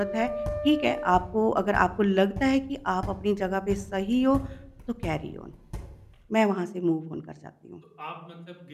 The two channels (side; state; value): both; identical; correlation 1.00